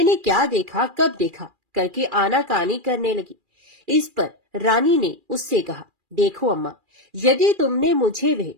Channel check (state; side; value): late; left; 2.4 ms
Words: क्या देखा, कब देखा करके आनाकानी करने लगी। इस पर रानी ने उससे कहा, देखो अम्मा, यदि तुमने मुझे वह